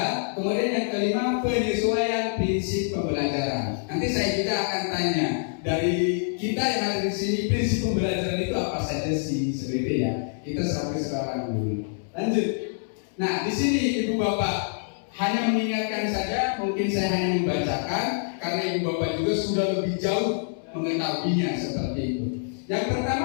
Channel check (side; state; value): right; silent; 61 dB below the other